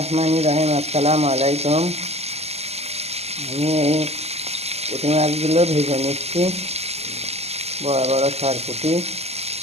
রহিম। আসসালামু আলাইকুম। আমি এই পুঁটি মাছগুলো ভেজে নিচ্ছি, বড় বড় সরপুঁটি।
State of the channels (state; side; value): late; left; 0.30 ms